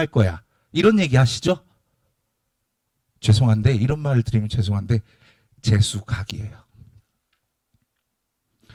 거야, 이런 얘기 하시죠? 죄송한데, 이런 말을 드리면 죄송한데 재수각이에요.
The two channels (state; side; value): identical; both; correlation 1.00